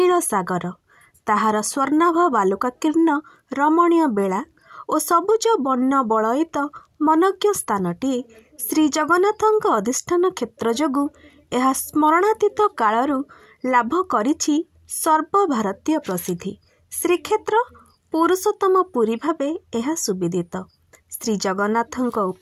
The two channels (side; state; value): both; identical; correlation 1.00